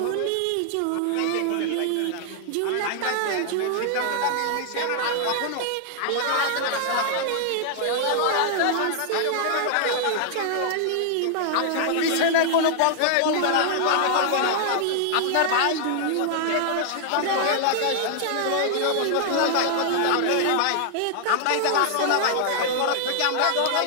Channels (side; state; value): both; different; correlation -0.01